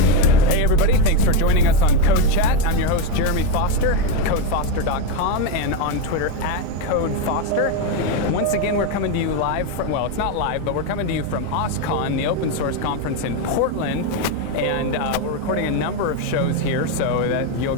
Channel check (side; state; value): both; different; correlation 0.04